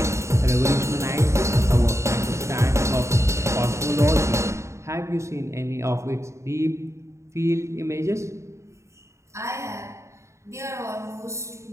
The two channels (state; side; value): late; left; 0.14 ms